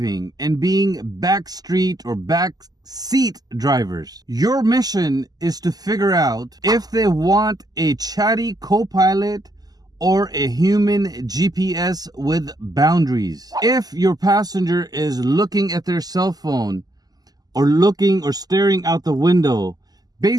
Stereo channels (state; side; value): late; left; 0.19 ms